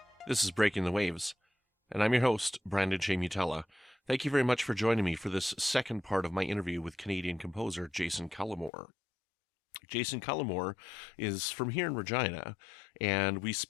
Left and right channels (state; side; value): drops out; right; at 8.7 s